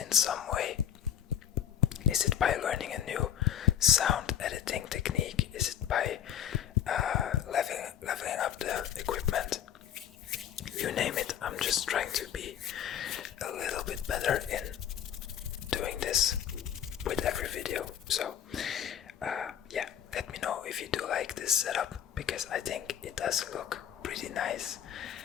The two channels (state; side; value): quieter; right; 9.7 dB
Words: some way. Is it by learning a new sound editing technique? Is it by leveling up the equipment? You name it, I'm just trying to be a little bit better in doing this with every video. So yeah, let me know if you do like this setup, because I think it does look pretty nice.